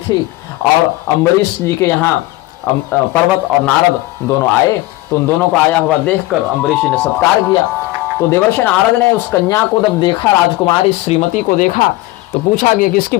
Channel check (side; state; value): right; quieter; 18.8 dB